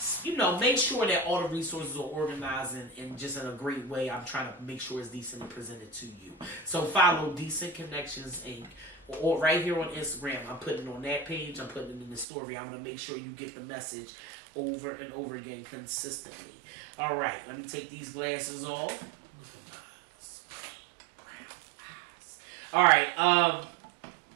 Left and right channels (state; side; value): drops out; left; at 12.2 s